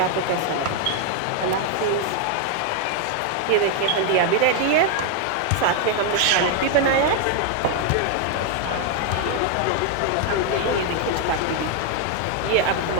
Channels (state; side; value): different; both; correlation 0.00